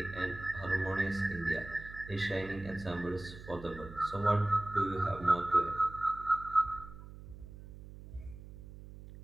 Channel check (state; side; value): noise; right; hum, 15 dB below the sound